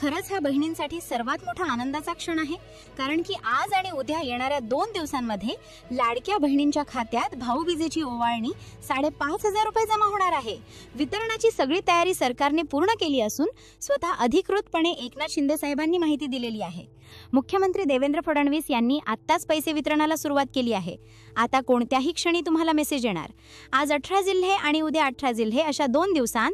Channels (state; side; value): identical; both; correlation 1.00